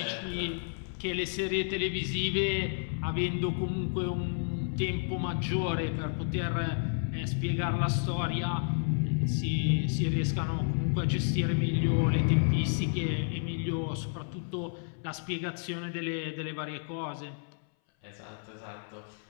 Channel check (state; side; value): silent; right; 57 dB below the other